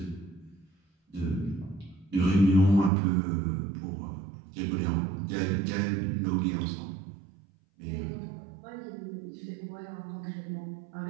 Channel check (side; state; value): left; drops out; at 2.9 s